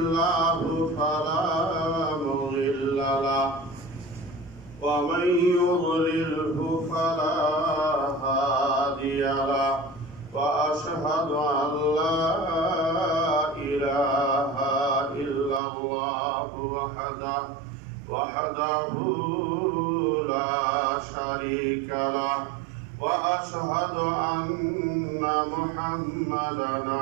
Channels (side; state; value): left; drops out; at 15.6 s